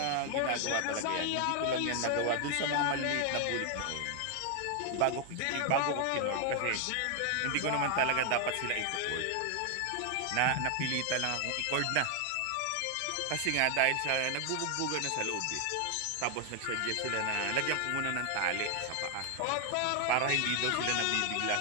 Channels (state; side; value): different; both; correlation 0.00